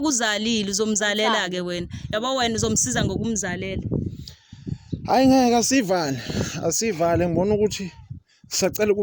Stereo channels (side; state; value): both; identical; correlation 1.00